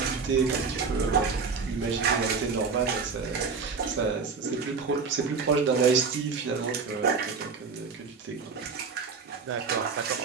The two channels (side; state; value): left; quieter; 5.1 dB